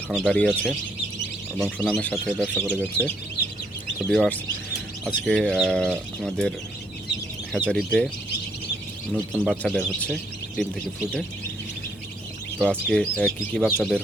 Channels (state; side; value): normal; both; correlation 0.70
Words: দাঁড়িয়ে আছে এবং সুনামের সাথে ব্যবসা করে যাচ্ছে। তো ভিউয়ার্স, আজকে আমাদের হ্যাচারিতে নতুন বাচ্চা বের হচ্ছে ডিম থেকে ফুটে। তো আজকে কি কি বাচ্চা বের